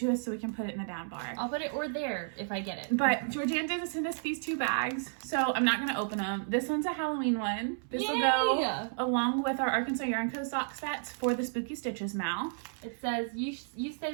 us so we can put it in the down bar. I'll put it or there if I get it. But Georgiana did send us these 2 bags, so I'm not going to open them. This one's a Halloween one. This will go along with our Arkansas Yarn Co. sock sets for the Spooky Stitches, Mal. It says, you say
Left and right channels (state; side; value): silent; left; 56 dB below the other